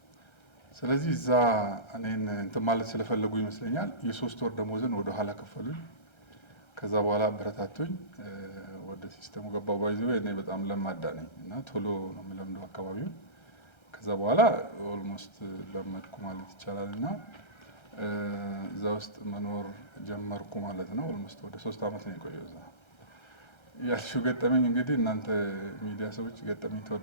ስለዚህ እዛ እኔን እንትን ማለት ስለፈለጉ ይመስለኛል የ3 ወር ደሞዝን ወደ ኋላ ከፈሉኝ። ከዛ በኋላ አበረታቱኝ፣ ወደ ሲስተሙ ገባው። ባይዘው እኔ በጣም ለማዳ ነኝ እና ቶሎ ነው የምለምደው አካባቢውን። ከዛ በኋላ ኦልሞስት ለመድኩ ማለት ይቻላል እና እዛ ውስጥ መኖር ጀመርኩ ማለት ነው። ኦልሞስት ወደ 3 ዓመት ነው የቆየው እዛ። ያልሽው ገጠመኝ እንግዲህ እናንተ ሚዲያ ሰዎች ገጠመኝ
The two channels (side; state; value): right; late; 1.3 ms